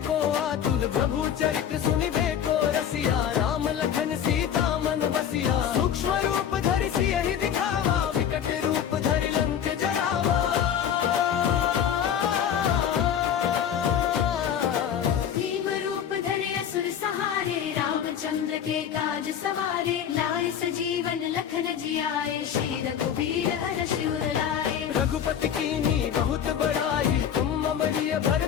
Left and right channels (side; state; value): right; quieter; 9.0 dB